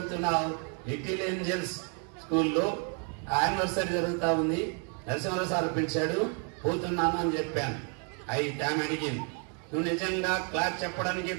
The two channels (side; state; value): left; quieter; 39.8 dB